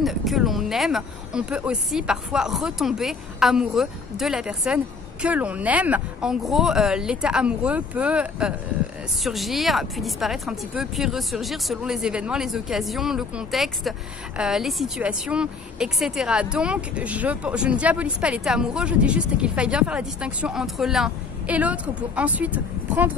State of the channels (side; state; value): right; quieter; 4.7 dB